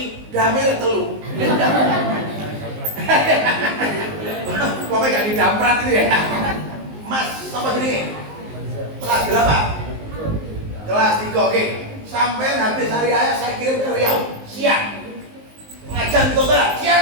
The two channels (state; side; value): late; left; 19 ms